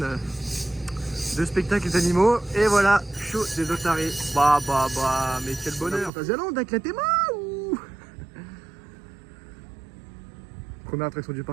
spectacles d'animaux, et voilà, show des otaries. Bah, mais quel bonheur. Fantasyland avec la théma ou. Première attraction du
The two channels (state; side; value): drops out; left; at 6.1 s